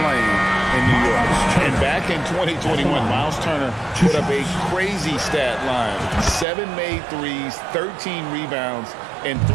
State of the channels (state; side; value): drops out; left; at 6.5 s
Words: in New York. And back in 2021, Miles Turner put up a crazy stat line. 7 made threes, 13 rebounds, and